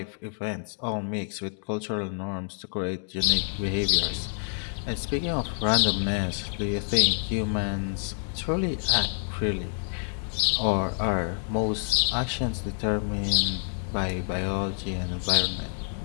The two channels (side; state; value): right; silent; 57 dB below the other